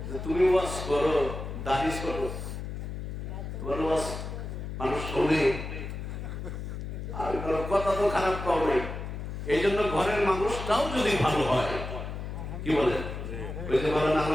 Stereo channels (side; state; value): left; noise; hum, 6 dB below the sound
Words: তুমি ওয়াজ করো, দাঁড়িয়ে করো, তোমার ওয়াজ মানুষ শোনে। আর কথা তো খারাপ পাও নাই, এই জন্য ঘরের মানুষটাও যদি ভালো হয়, কি বলে? ওই যে বলেন